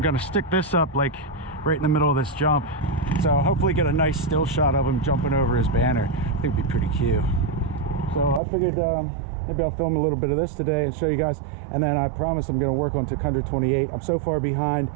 gonna stick this up like right in the middle of this jump, so hopefully get a nice still shot of him jumping over his banner. I think it'd be pretty cute. So I figured maybe I'll film a little bit of this today and show you guys, and then I promise I'm going to work on Tuk 128. I'm so far behind.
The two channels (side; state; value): left; drops out; at 8.4 s